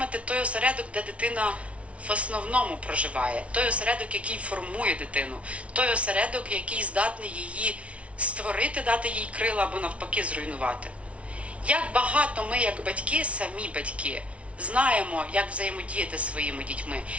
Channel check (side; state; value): left; late; 0.063 ms